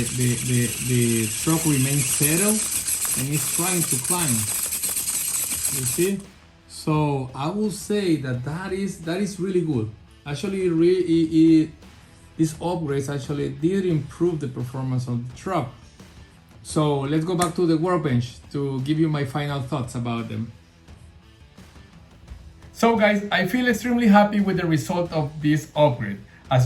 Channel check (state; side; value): identical; both; correlation 1.00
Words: truck remains settled and it's trying to climb. You see? So I will say that is really good. Actually, these upgrades actually did improve the performance of the truck. So let's go back to the workbench to give you my final thoughts about them. So guys, I feel extremely happy with the result of this upgrade.